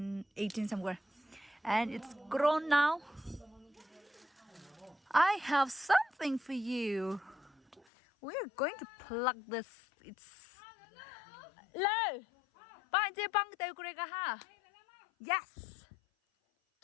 18 somewhere. And it's grown now. I have something for you. We're going to plug this. It's low. Yes.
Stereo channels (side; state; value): right; drops out; at 7.9 s